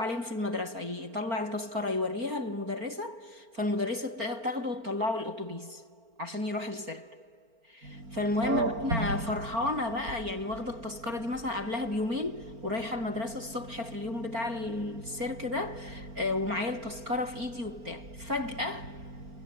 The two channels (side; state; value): left; late; 4.4 ms